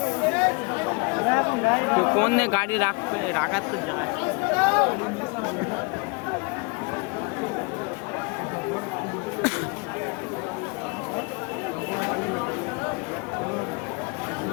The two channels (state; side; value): quieter; right; 30.9 dB